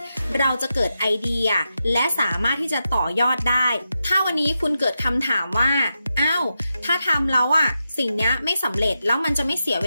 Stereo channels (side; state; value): both; inverted; correlation -0.88